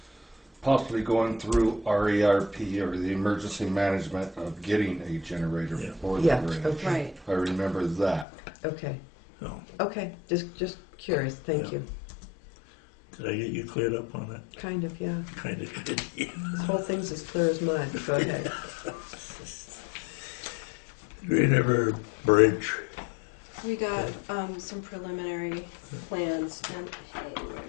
possibly going through RERP or the emergency management of getting a generator Yeah. for the Yeah, bridge. okay. Right. I remember that. Okay. So, Okay. Just curious. Thank Yeah. you. did I get you cleared up on that? Kind of, yeah. Kind of did, yeah. This whole thing's as clear as mud. Go ahead. Green River Bridge. We got some preliminary plans and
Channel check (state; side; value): drops out; right; at 8.2 s